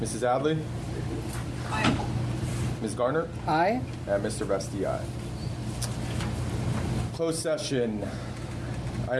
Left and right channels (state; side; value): identical; both; correlation 1.00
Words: Mrs. Adley? Aye. Ms. Garner? Aye. And Mr. Vesti, aye. Closed session.